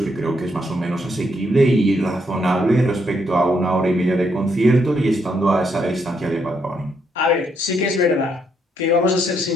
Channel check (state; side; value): normal; both; correlation 0.75